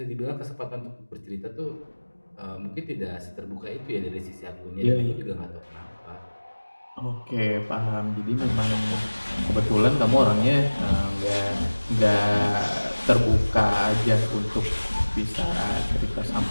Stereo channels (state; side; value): inverted; both; correlation -1.00